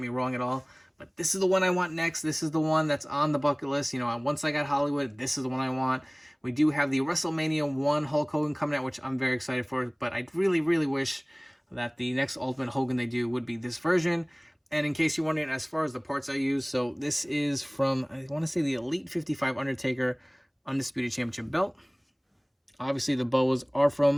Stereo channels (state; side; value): identical; both; correlation 1.00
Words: wrong at all. But this is the one I want next. This is the one that's on the bucket list. You know, once I got Hollywood, this is the one I want. We do have the WrestleMania 1 Hulk Hogan coming out, which I'm very excited for. But I really, really wish that the next Ultimate Hogan they do would be this version. And in case you're wondering, as far as the parts I use, so this is from, I want to say, the Elite 55 Undertaker Undisputed Championship belt. Obviously, the bows are